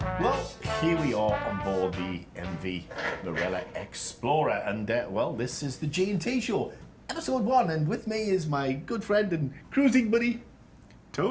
Well, here we are on board the MV Marella Explorer, and well, this is the G&T show, episode 1, and with me is my good friend and cruising buddy,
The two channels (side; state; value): both; identical; correlation 1.00